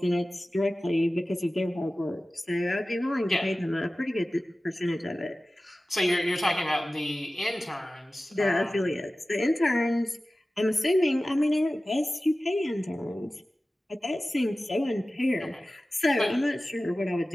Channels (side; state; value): both; normal; correlation 0.96